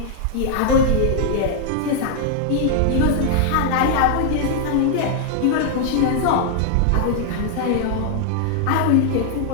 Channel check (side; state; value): both; different; correlation -0.01